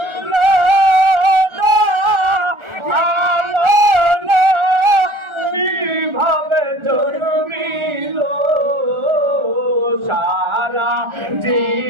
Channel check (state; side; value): late; left; 1.4 ms